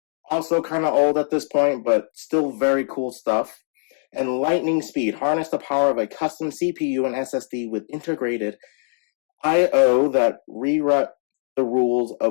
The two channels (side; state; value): right; silent; digital silence